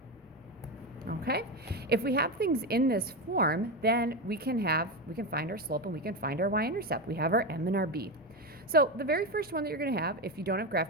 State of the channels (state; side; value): normal; both; correlation 0.15